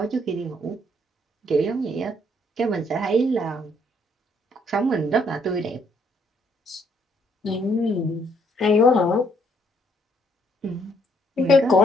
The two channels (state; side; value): normal; both; correlation 0.68